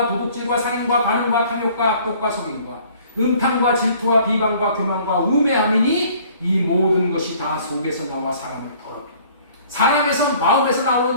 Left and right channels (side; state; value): both; inverted; correlation -0.55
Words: 도둑질과 살인과 반응과 탐욕과 악독과 속임과 음탕과 질투와 비방과 교만과 우매함이니 이 모든 것이 다 속에서 나와 사람을 더럽게. 사람에서 마음에서